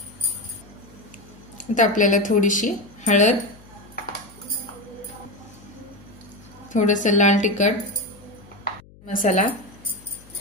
आता आपल्याला थोडीशी हळद, थोडंसं लाल तिखट मसाला,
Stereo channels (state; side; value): noise; left; hum, 24 dB below the sound